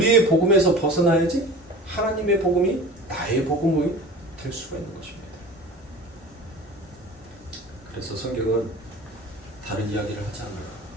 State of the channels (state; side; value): normal; both; correlation 0.38